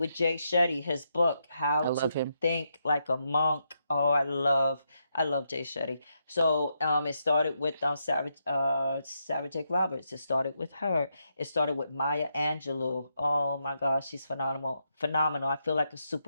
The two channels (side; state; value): both; inverted; correlation -0.82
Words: Jay Shetty, his book, How I to love him. Think Like a Monk. Oh, I love Jay Shetty. So it started with Sarah Jake Roberts. It started with her. It started with Maya Angelou. Oh my gosh, she's phenomenal. Phenomenal. I feel like a